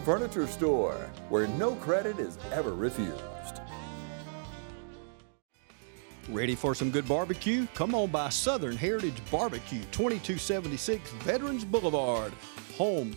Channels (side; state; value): left; silent; digital silence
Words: Furniture Store, where no credit is ever refused. Ready for some good barbecue? Come on by Southern Heritage Barbecue, 2276 Veterans Boulevard. Home